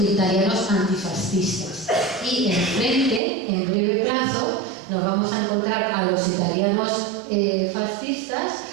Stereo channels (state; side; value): drops out; left; at 3.2 s